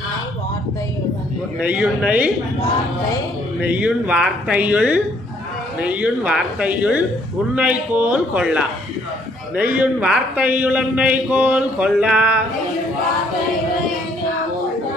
நெய்யுண் வார்த்தையுள் உன்னை கோல் கொள்ளா. நெய்யுண் வார்த்தையுள் என்னை கோல் கொள்ளா.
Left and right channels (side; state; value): both; normal; correlation 0.65